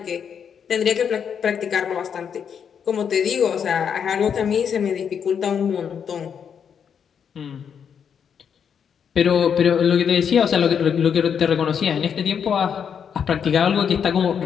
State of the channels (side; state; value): right; quieter; 7.5 dB